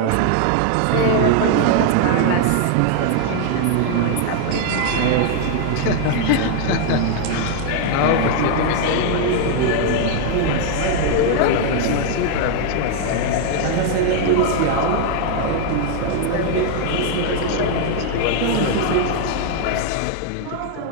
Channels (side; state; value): both; different; correlation 0.00